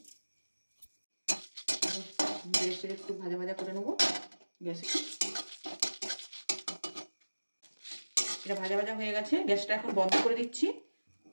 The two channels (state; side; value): inverted; both; correlation -1.00